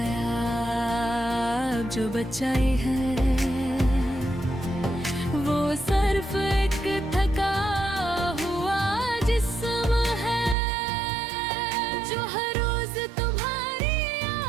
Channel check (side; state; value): left; drops out; at 10.6 s